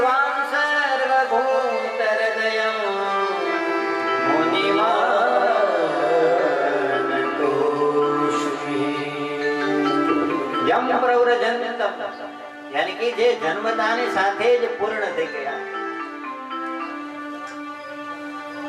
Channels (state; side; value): identical; both; correlation 1.00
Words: सर्वभूतहृदयं यम प्रव्रजन्तम यानी कि जे जन्मतानी સાથે જ પૂર્ણ થઈ ગયા,